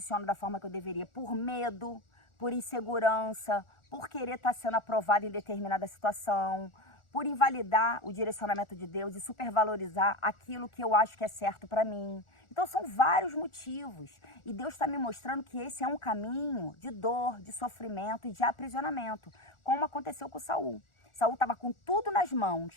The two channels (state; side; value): late; right; 1.4 ms